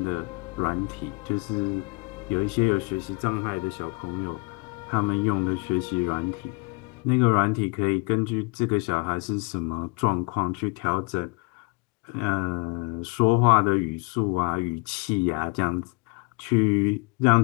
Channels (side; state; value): right; quieter; 29.5 dB